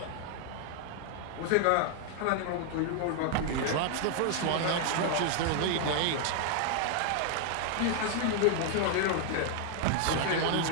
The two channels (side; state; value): both; different; correlation 0.00